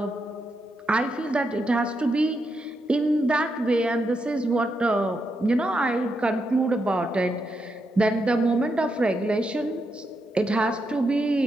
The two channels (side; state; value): both; normal; correlation 0.83